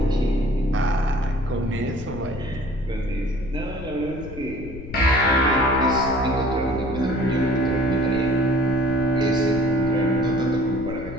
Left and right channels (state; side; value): noise; left; rumble, 12 dB below the sound